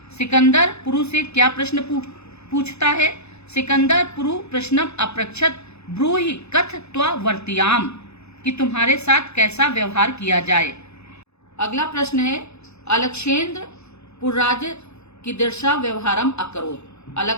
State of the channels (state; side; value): late; right; 0.80 ms